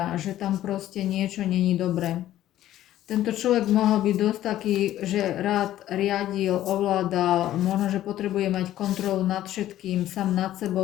že tam proste niečo není dobré. Tento človek mohol byť dosť taký, že rád riadil, ovládal, možno, že potrebuje mať kontrolu nad všetkým, sám nad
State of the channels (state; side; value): quieter; right; 13.2 dB